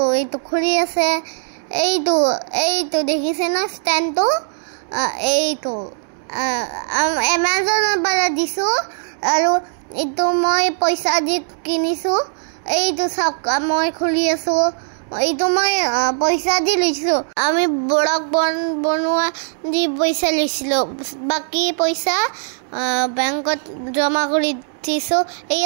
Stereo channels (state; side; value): silent; left; digital silence